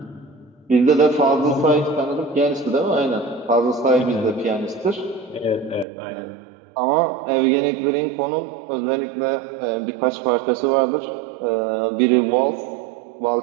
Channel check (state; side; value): drops out; left; at 5.9 s